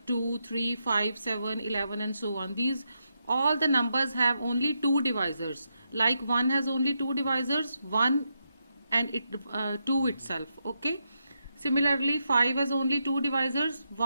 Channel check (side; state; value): both; inverted; correlation -0.84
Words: 2, 3, 5, 7, 11 and so on. These all the numbers have only two divisors, like 1 has only two divisors, 1 and 2 itself. Okay, similarly 5 has only two divisors,